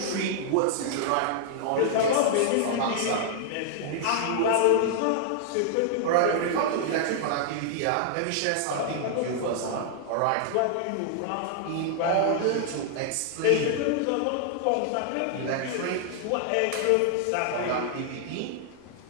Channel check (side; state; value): both; different; correlation -0.01